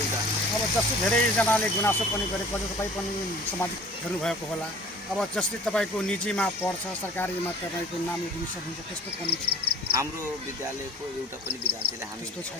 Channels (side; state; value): both; normal; correlation 0.46